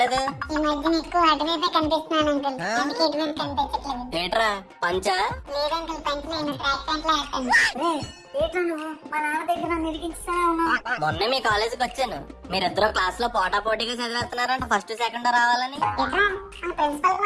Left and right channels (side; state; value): both; identical; correlation 1.00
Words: ఈ మధ్య నీకు అటువైపే కనిపిస్తున్నాను అంకుల్, ఎందుకు ఇటువైపు కనిపించట్లేదు? ఏట్రా పంచా? లేదు అంకుల్, పంచి నేను ట్రాక్ ప్యాంట్ లో వేస్తాను. రే ఏట్లా నువ్వు మా నాన్న దగ్గర నన్ను ఇరికించుతానే ఉన్నావు. మొన్న మీ కాలేజీకి వచ్చాను, మీరిద్దరు క్లాస్ లో పోటా పోటీగా చదివేస్తున్నారంట, ఫస్ట్ సెకండ్ రావాలని. ఎట్రా, మన ప్రిన్సిపల్ కి